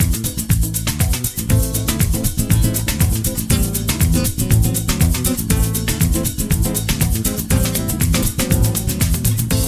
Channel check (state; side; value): identical; both; correlation 1.00